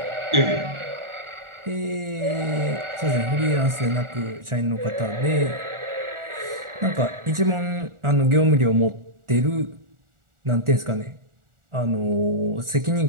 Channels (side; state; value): left; late; 1.4 ms